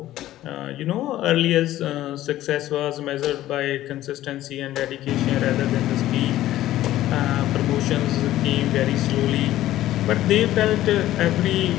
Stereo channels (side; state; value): right; quieter; 14.3 dB